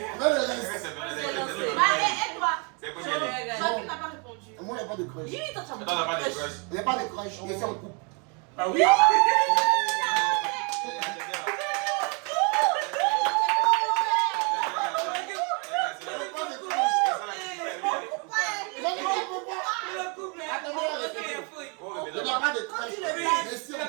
Mais le reste. Allez, et toi? C'est quoi dire? Joaquin n'a pas répondu. Moi, il n'y a pas de crush. Dis, toi, tu as Attends, t'as pas de crush. Il n'y a pas de crush. Il est en couple. Ah oui? Il n'y a pas de crush. Je suis en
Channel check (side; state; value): left; quieter; 34.8 dB